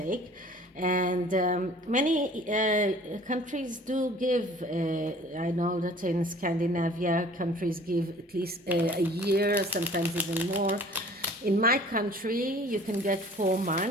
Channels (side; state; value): both; normal; correlation 0.49